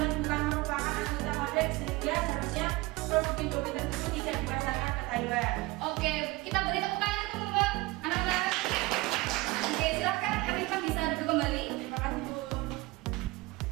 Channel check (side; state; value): left; quieter; 21.3 dB